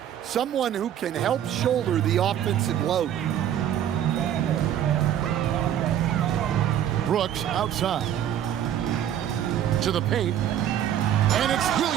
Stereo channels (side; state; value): left; quieter; 10.5 dB